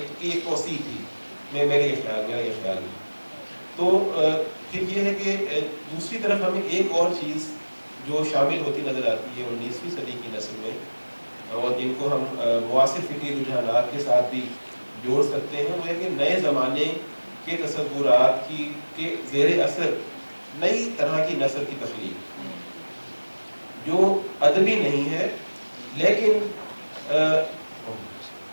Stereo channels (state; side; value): inverted; both; correlation -1.00